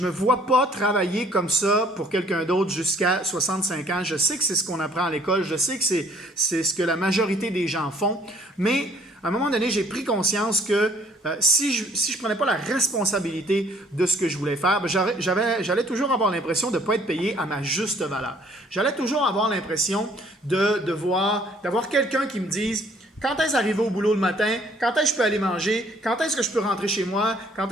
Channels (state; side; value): normal; both; correlation 0.59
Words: me vois pas travailler comme ça pour quelqu'un d'autre jusqu'à 65 ans. Je sais que c'est ce qu'on apprend à l'école. Je sais que c'est ce que la majorité des gens font. Mais à un moment donné, j'ai pris conscience que si je ne prenais pas la responsabilité de ce que je voulais faire, j'allais toujours avoir l'impression de ne pas être payé à ma juste valeur. J'allais toujours avoir l'impression d'avoir quelqu'un qui me dise quand est-ce d'arriver au boulot le matin, quand est-ce que je peux aller manger, quand est-ce que je peux rentrer chez moi, quand